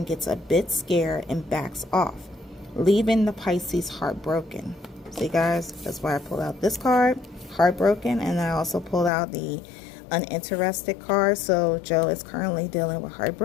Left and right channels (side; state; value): right; drops out; at 9.1 s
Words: gets a bit scared and backs off, leaving the Pisces heartbroken. See, guys, that's why I pulled out this card, heartbroken, and I also pulled out the uninterested card. So Joe is currently dealing with